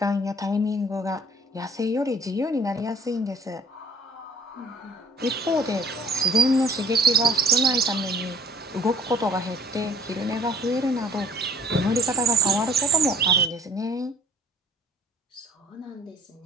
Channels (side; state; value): both; normal; correlation 0.56